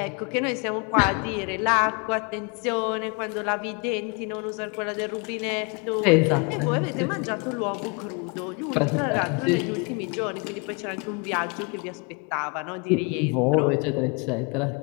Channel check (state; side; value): quieter; right; 31.7 dB